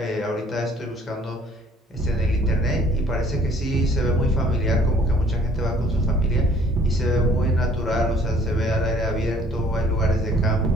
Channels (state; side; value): normal; both; correlation 0.57